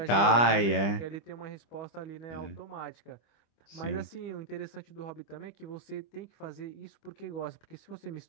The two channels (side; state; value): right; late; 25 ms